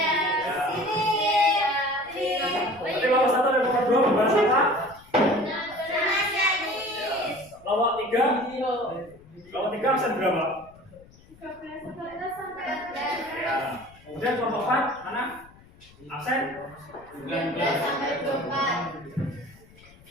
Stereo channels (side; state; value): left; noise; rumble, 25 dB below the sound